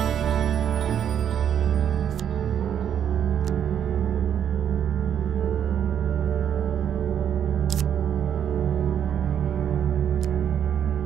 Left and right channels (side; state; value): left; quieter; 9.0 dB